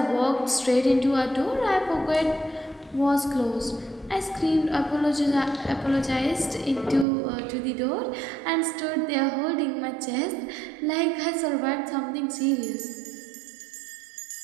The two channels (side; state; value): left; drops out; at 7.1 s